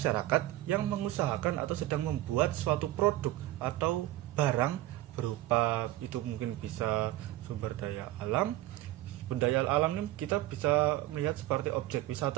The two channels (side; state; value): left; quieter; 15.9 dB